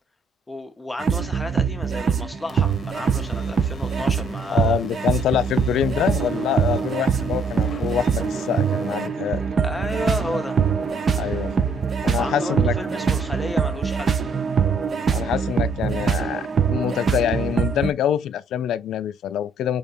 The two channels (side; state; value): both; normal; correlation 0.65